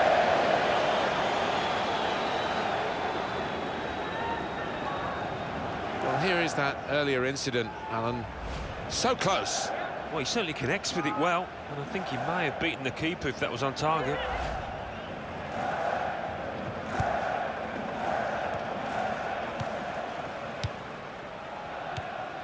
Well, here is that earlier incident, Alan. So close. Well, he certainly connects with it well, and I think he may have beaten the keeper if that was on target.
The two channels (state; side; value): identical; both; correlation 1.00